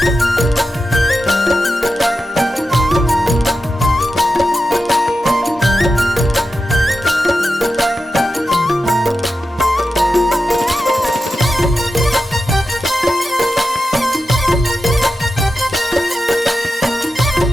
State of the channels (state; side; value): normal; both; correlation 0.91